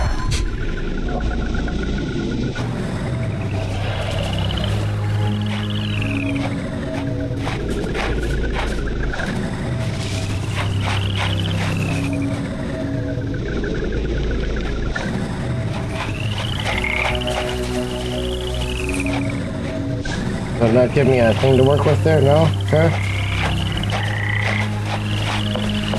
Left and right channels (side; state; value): both; identical; correlation 1.00